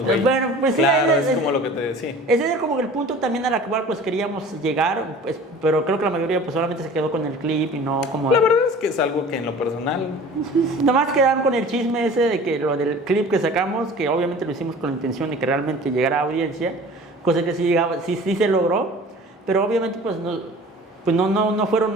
güey. Bueno, pues claro, sí. Es como lo que te decía. Ese es como el punto también al cual pues queríamos llegar, pues, pero creo que la mayoría pues solamente se quedó con el clip y no como... La verdad es que es algo que en lo personal... Nomás quedaron con el chisme ese de que lo del clip que sacamos, que obviamente lo hicimos con la intención de que realmente llegara a audiencia, cosa que sí se logró, pero obviamente pues no fueron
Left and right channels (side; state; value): both; normal; correlation 0.43